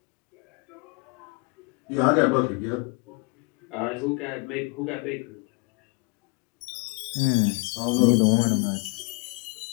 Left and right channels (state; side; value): quieter; right; 31.7 dB